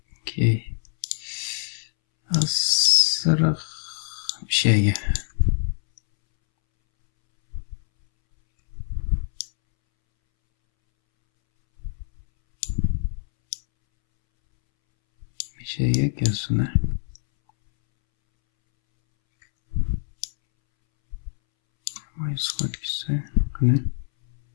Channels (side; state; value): right; silent; 62 dB below the other